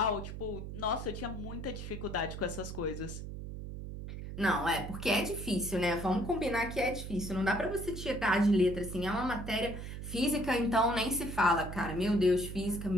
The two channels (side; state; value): right; noise; hum, 8 dB below the sound